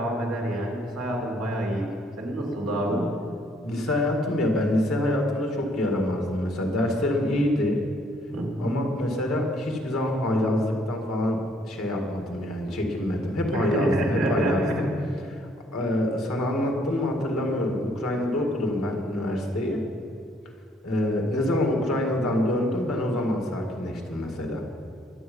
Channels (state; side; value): normal; both; correlation 0.66